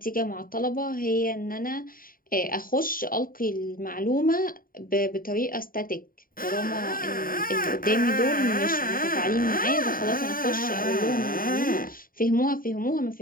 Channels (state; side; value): late; right; 0.41 ms